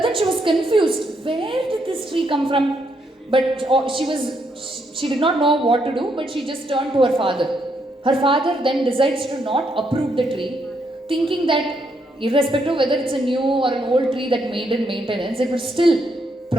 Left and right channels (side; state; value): both; normal; correlation 0.76